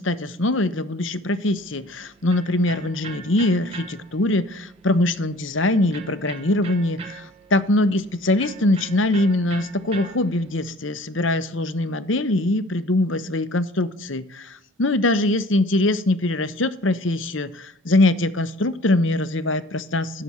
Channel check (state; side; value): normal; both; correlation 0.50